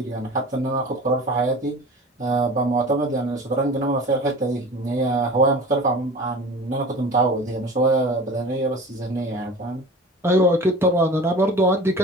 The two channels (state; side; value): normal; both; correlation 0.38